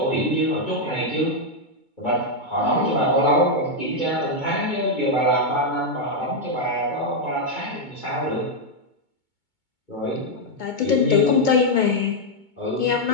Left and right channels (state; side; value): late; right; 2.2 ms